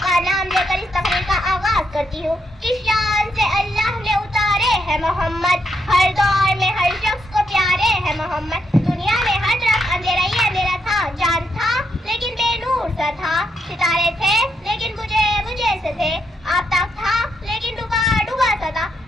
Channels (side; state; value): both; normal; correlation 0.79